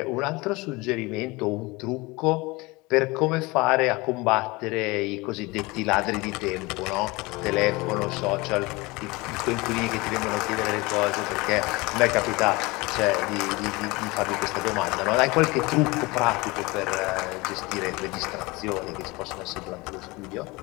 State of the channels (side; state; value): right; quieter; 23.6 dB